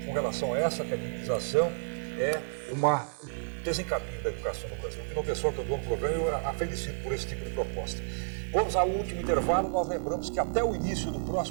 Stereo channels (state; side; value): silent; left; digital silence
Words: com relação a essa academização é um desencaminho da educação no Brasil. Que não pessoal que eu dou no programa, eu a felicito por esse tipo de proposta. Vamos ao último intervalo. Nós lembramos que até o início do